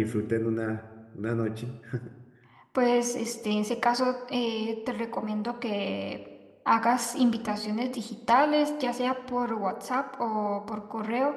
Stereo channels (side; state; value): both; identical; correlation 1.00